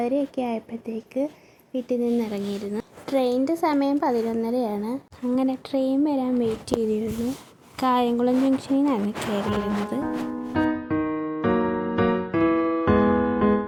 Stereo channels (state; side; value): identical; both; correlation 1.00